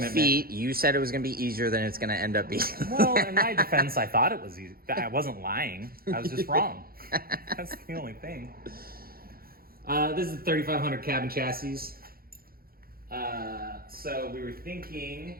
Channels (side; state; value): left; late; 0.43 ms